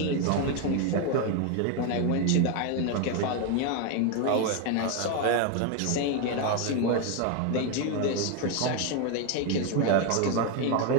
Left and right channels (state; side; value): different; both; correlation 0.02